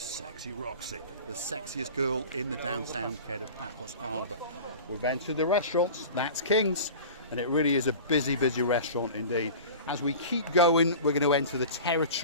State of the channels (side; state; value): both; inverted; correlation -0.37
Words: Sexy Roxy, the sexiest girl in the downtown Kato Paphos Harbour. We've entered the restaurants, that's King's, and it really is a busy, busy restaurant indeed. As we keep going, we're going to enter the